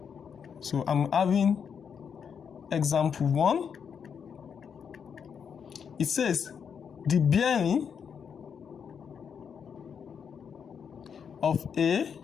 so I'm having example 1. It says the bearing of A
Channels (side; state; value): right; quieter; 7.0 dB